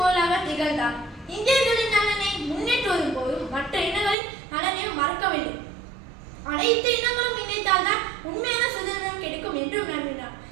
திகழ்ந்தார். இந்தியர்களின் நலனை முன்னேற்றுவதும் போதும் மற்ற இனங்களின் நலனையும் மறக்கவில்லை. அனைத்து இனங்களும் இணைத்தால்தான் உண்மையான சுதந்திரம் கிடைக்கும் என்று நம்பினார்.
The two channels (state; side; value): drops out; left; at 4.2 s